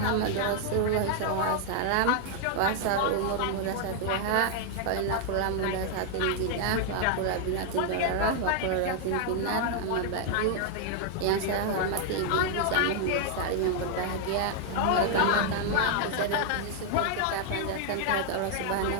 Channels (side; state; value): both; different; correlation 0.00